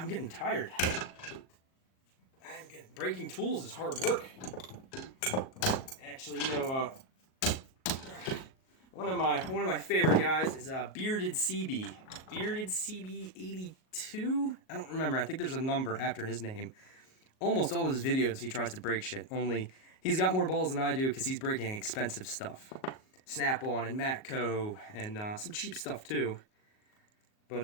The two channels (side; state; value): right; late; 38 ms